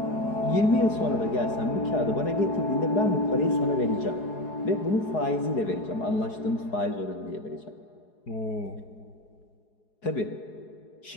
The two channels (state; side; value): late; right; 4.7 ms